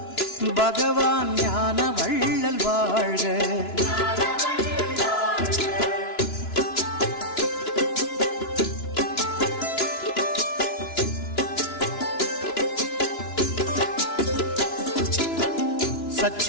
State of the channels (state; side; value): late; right; 2.9 ms